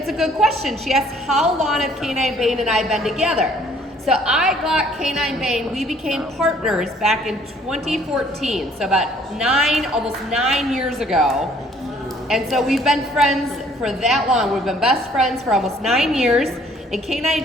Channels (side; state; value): both; normal; correlation 0.59